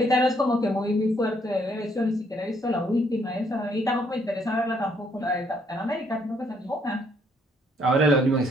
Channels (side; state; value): both; normal; correlation 0.69